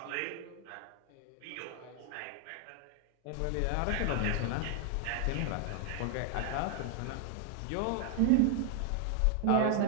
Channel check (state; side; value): different; both; correlation 0.00